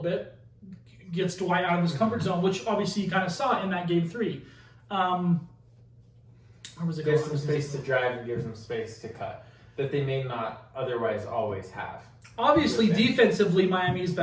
gets Dwight out of his comfort zone, which obviously you kind of saw in that Game 3. Gives them space to drive and gives them space to cut that they may not otherwise always have. Obviously, defensively, Miami is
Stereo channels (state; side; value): identical; both; correlation 1.00